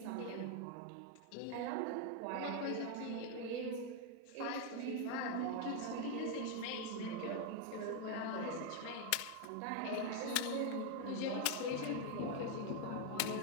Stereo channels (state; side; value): different; both; correlation 0.01